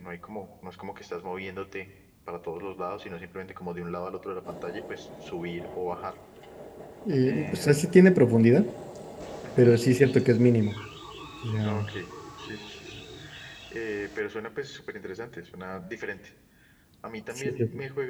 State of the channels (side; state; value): both; identical; correlation 1.00